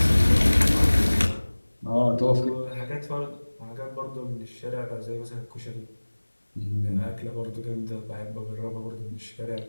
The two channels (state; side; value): inverted; both; correlation -1.00